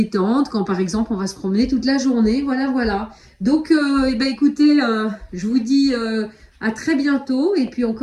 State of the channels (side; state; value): both; identical; correlation 1.00